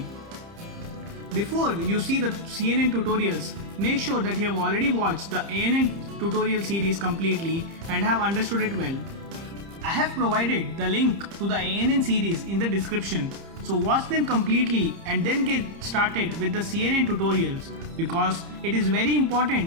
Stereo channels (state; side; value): late; left; 30 ms